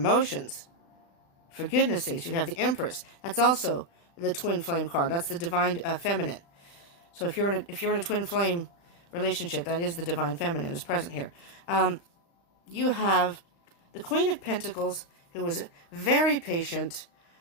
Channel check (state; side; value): late; right; 35 ms